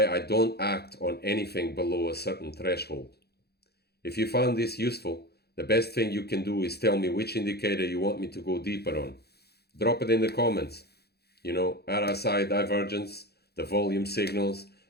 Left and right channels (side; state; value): right; late; 0.47 ms